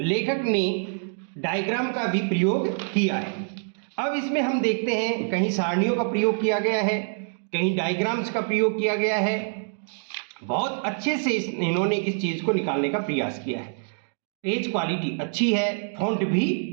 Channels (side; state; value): left; silent; 61 dB below the other